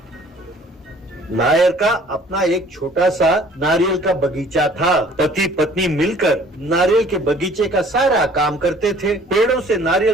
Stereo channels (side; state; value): both; normal; correlation 0.54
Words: नायर का अपना एक छोटा सा नारियल का बगीचा था। पति पत्नी मिलकर नारियल के बगीचे का सारा काम करते थे। पेड़ों से